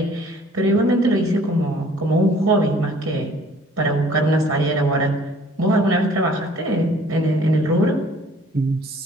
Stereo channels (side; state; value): both; normal; correlation 0.55